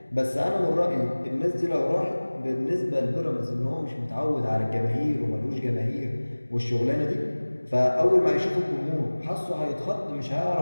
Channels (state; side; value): inverted; both; correlation -1.00